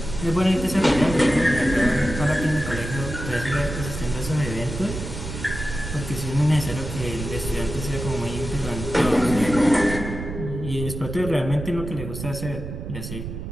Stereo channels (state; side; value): noise; right; rumble, 7 dB below the sound